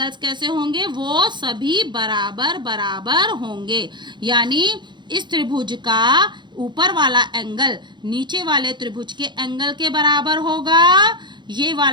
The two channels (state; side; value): late; left; 0.22 ms